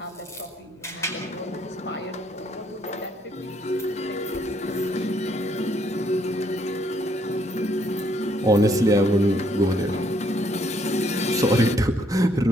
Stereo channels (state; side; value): normal; both; correlation 0.69